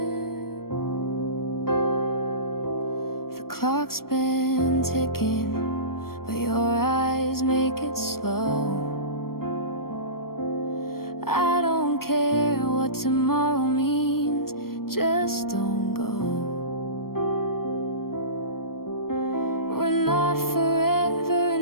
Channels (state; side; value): late; right; 0.93 ms